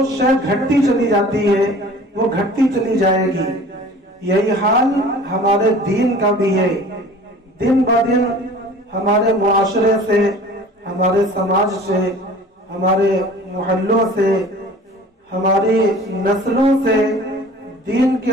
شے گھٹتی چلی جاتی ہے، وہ گھٹتی چلی جائے گی۔ یہی حال ہمارے دین کا بھی ہے۔ دن بہ دن ہمارے معاشرے سے، ہمارے سماج سے، ہمارے محلوں سے، ہماری نسلوں سے دین کے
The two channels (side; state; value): both; normal; correlation 0.45